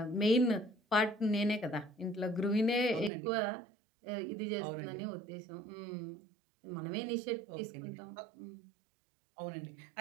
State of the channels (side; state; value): left; drops out; at 3.1 s